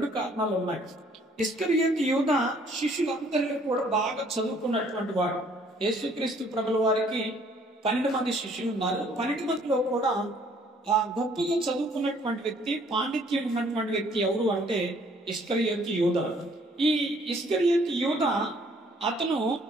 కారణాలు ఉన్నాయి. ఇస్కరియోతు యూదా శిష్యులందరిలో కూడా బాగా చదువుకున్నటువంటి వాడు. యేసుక్రీస్తు ప్రభుల వారికి 12 మంది శిష్యులు ఉన్నారు. 12 మందిలో కూడా గొప్పగా చదువుకున్నటువంటి వ్యక్తి, పాండిత్యం ఉన్నటువంటి వ్యక్తి ఎవరు అంటే ఇస్కరియోతు యూదా. ఈ ఇస్కరియోతు యూదా అతను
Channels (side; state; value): both; normal; correlation 0.61